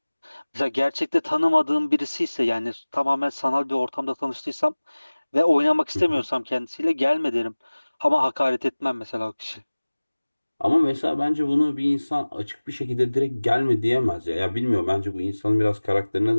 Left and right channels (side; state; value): both; inverted; correlation -1.00